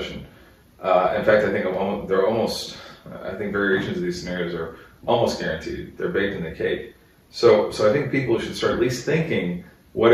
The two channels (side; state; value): both; identical; correlation 1.00